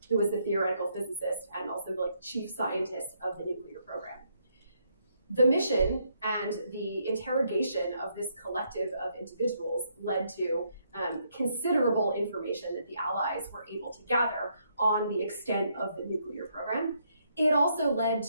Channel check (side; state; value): both; inverted; correlation -0.74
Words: who was the theoretical physicist and also the chief scientist of the nuclear program. The mission and the interrogation of this collective of individuals led to considerable information that the Allies were able to gather on the extent of the nuclear program. It also led